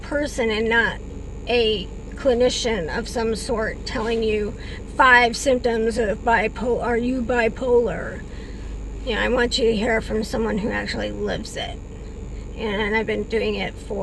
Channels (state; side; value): identical; both; correlation 1.00